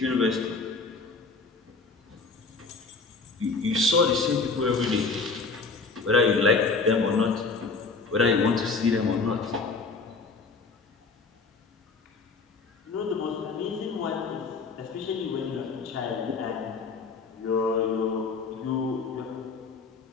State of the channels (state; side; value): quieter; right; 4.2 dB